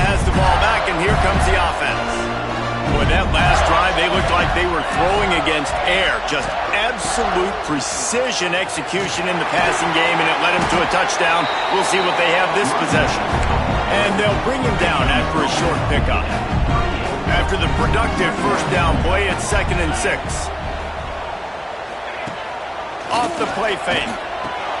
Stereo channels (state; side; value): identical; both; correlation 1.00